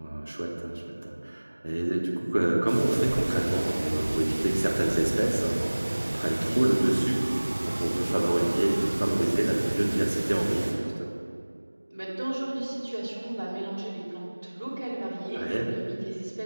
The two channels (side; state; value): both; inverted; correlation -1.00